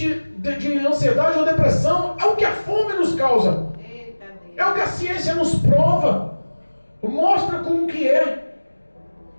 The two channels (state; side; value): inverted; both; correlation -1.00